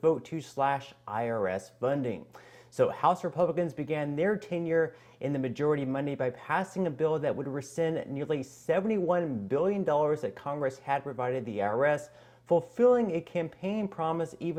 vote to slash IRS funding. So House Republicans began their tenure in the majority Monday by passing a bill that would rescind nearly $71 billion that Congress had provided the IRS, fulfilling a campaign promise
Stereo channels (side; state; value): both; identical; correlation 1.00